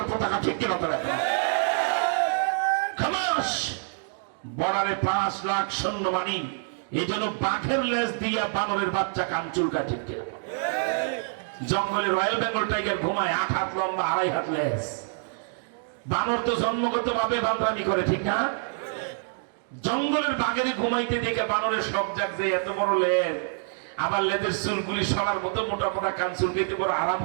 পতাকা। ঠিক কিনা? বর্ডারে 5 লাখ সৈন্যবাহিনী, এই জন্য বাঘের লেজ দিয়া বানরের বাচ্চা কান চুলকায়। ঠিক কিনা? জঙ্গলে রয়্যাল বেঙ্গল টাইগার ঘুমায়, 8 হাত লম্বা, 2.5 হাত লেজ। বানর তো জন্মগত ভাবে বান্দামি করে। ঠিক না? জঙ্গলের বাঘের ঘুমাইতে দেখে বানরের শখ জাগছে, এত বড় লেজ, আবার লেজের চুলগুলি সরার মতো মোটা মোটা কান চুলকাইতে বড় আরাম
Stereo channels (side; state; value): left; silent; digital silence